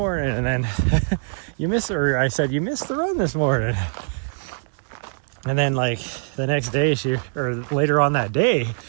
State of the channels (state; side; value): silent; left; digital silence